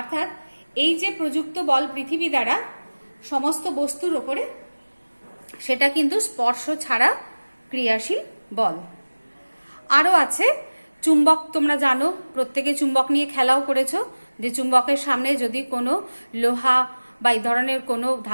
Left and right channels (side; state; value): both; inverted; correlation -1.00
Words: এই যে প্রযুক্ত বল পৃথিবী দ্বারা সমস্ত বস্তুর ওপরে, সেটা কিন্তু স্পর্শ ছাড়া ক্রিয়াশীল বল। আরও আছে চুম্বক। তোমরা জানো, প্রত্যেকে চুম্বক নিয়ে খেলাও করেছো, যে চুম্বকের সামনে যদি কোনো লোহা বা এই ধরনের কোনো